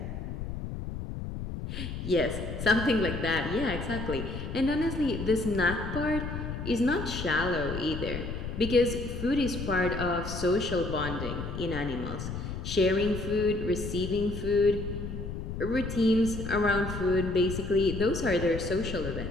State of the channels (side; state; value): left; noise; rumble, 6 dB below the sound